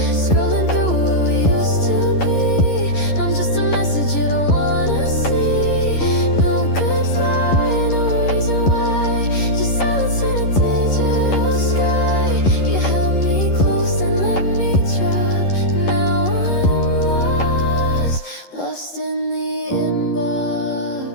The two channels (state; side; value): late; right; 11 ms